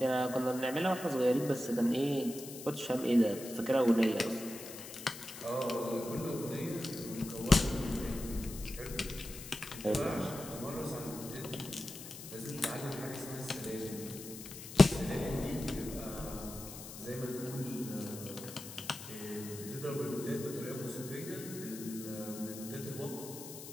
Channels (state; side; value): noise; left; hiss, 12 dB below the sound